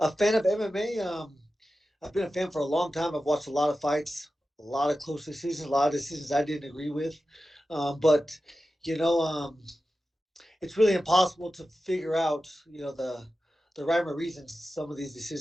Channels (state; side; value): normal; both; correlation 0.93